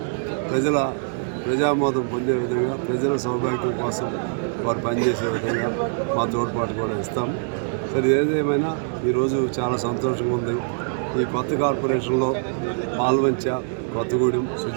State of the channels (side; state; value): left; silent; 60 dB below the other